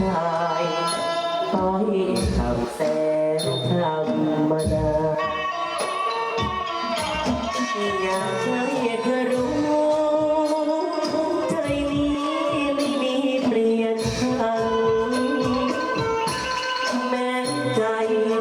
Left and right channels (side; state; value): both; identical; correlation 1.00